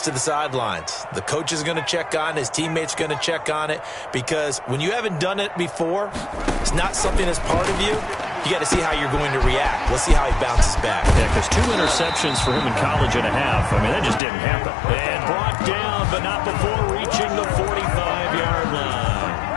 to the sidelines. The coach is going to check on it. His teammates are going to check on it because when you haven't done it before, it's not something that's part of you. You got to see how you're going to react. Let's see how he bounces back. Yeah, because 2 interceptions for him in college and a half. I mean, that just didn't happen. And brought down, but not before reaching the 45-yard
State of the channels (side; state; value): right; drops out; at 14.2 s